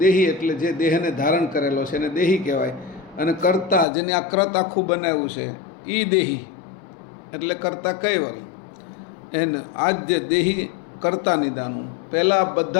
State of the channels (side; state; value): right; drops out; at 3.9 s